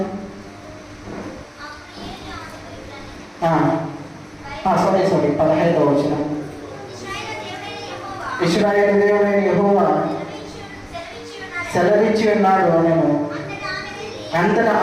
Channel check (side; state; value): both; identical; correlation 1.00